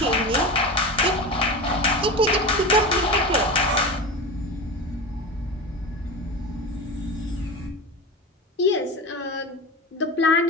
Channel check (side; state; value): both; normal; correlation 0.26